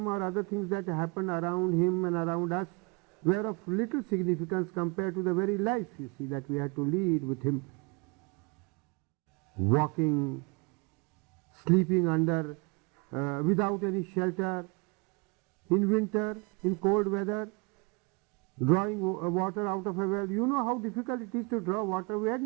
or other things that happened around him and around us, were of little significance compared to the very life, you see, that we had to lead with him. Walking, sleeping under, without any shelter, in winter, in cold weather, drawing water out of a well. You know how difficult it is to draw water. We had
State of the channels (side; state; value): left; quieter; 29.4 dB